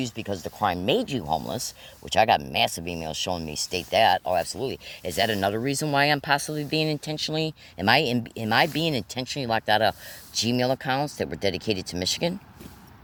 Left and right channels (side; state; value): both; identical; correlation 1.00